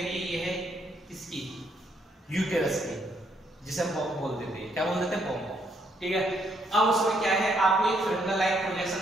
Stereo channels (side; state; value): both; normal; correlation 0.72